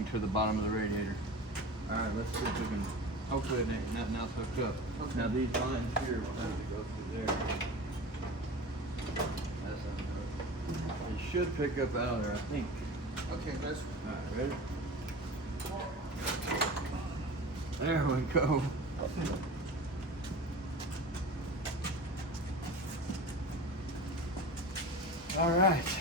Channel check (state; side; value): normal; both; correlation 0.34